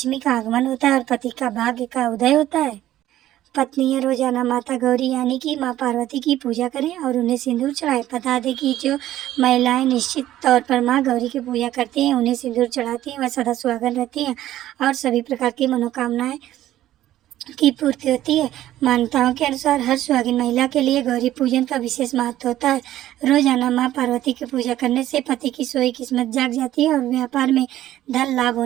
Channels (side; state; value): left; quieter; 13.6 dB